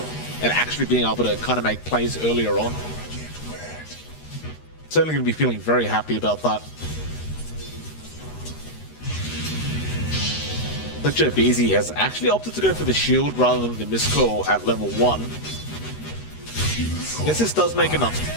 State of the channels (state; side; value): late; right; 13 ms